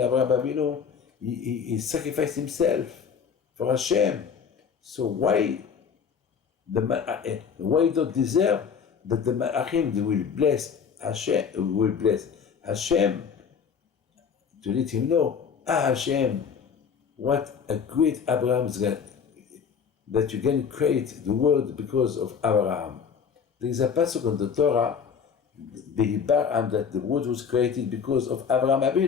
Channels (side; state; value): right; quieter; 6.7 dB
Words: Abinu. He sacrificed himself for Hashem. So why don't deserve that the Malachim will bless Hashem to let him know, Hashem, what a great Abraham is going, that you can create the world because of Abraham. There is a passage on the Torah, the Hibaram, that the world was created because of Abraham